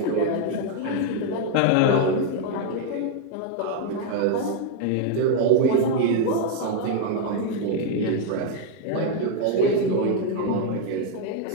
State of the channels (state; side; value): different; both; correlation 0.00